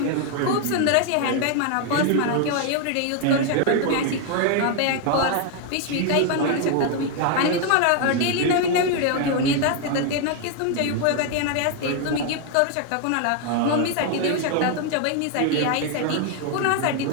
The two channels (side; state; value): both; different; correlation 0.01